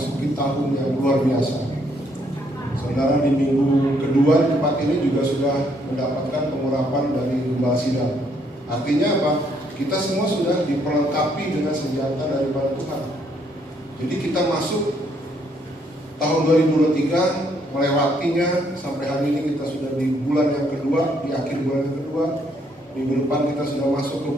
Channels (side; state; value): both; normal; correlation 0.70